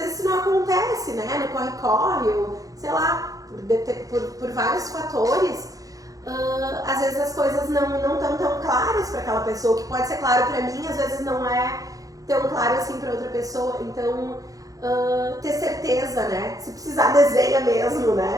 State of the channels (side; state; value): left; late; 0.17 ms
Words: isso não acontece, né? No corre-corre, ou sei lá, por vários fatores, às vezes as coisas não estão tão claras para aquela pessoa. O que pode ser claro para mim, às vezes não é tão claro assim para outra pessoa. Então, ter certeza, né? Se precisar, desenha mesmo,